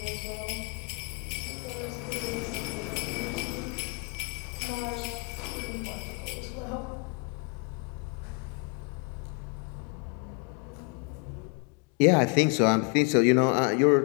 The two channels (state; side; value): quieter; right; 31.9 dB